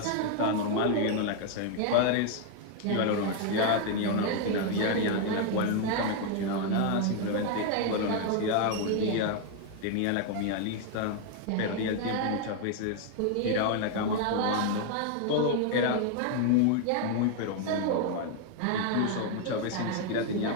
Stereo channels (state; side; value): different; both; correlation 0.00